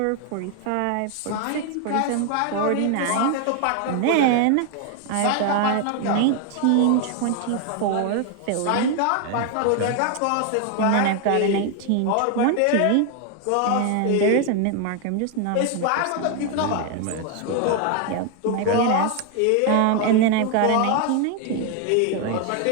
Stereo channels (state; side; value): different; both; correlation 0.01